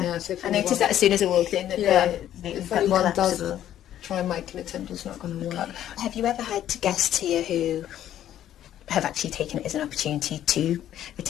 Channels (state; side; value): quieter; right; 11.6 dB